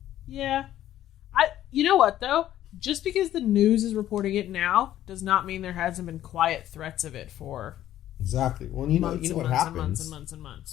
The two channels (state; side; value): quieter; right; 12.6 dB